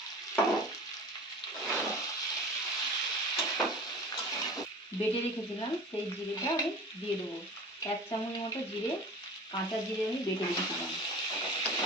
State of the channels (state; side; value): normal; both; correlation 0.39